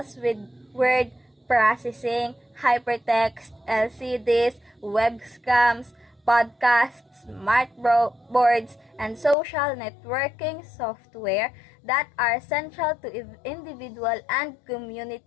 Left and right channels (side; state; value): right; drops out; at 9.3 s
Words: with word processing, hypertext, LCDs, webcams, podcasts, smart boards, and social networking software that are central to individual and